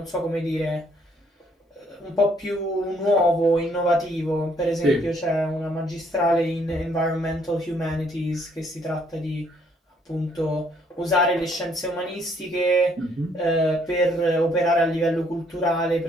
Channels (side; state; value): both; normal; correlation 0.66